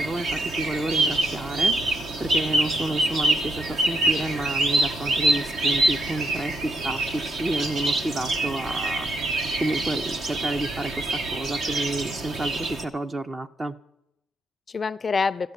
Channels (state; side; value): normal; both; correlation 0.79